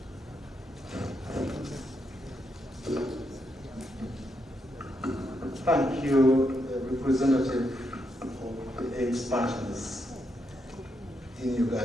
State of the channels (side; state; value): both; normal; correlation 0.80